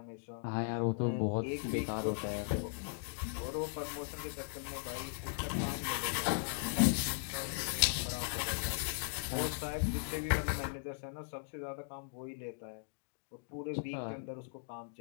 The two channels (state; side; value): silent; right; digital silence